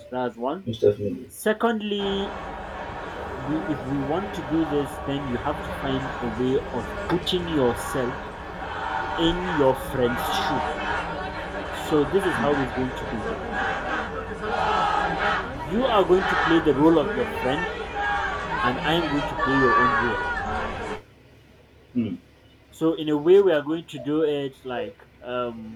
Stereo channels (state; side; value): identical; both; correlation 1.00